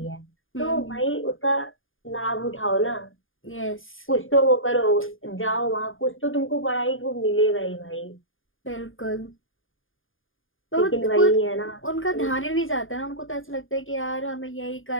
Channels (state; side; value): late; right; 0.59 ms